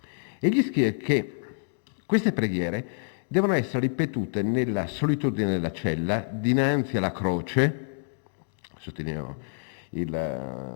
Egli scrive che queste preghiere devono essere ripetute nella solitudine della cella, dinanzi alla croce, sottolineo il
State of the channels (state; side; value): silent; right; digital silence